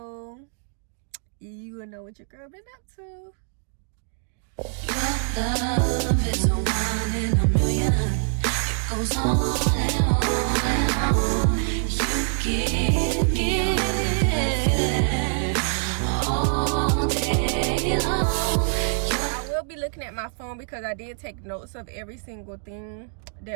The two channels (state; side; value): silent; left; digital silence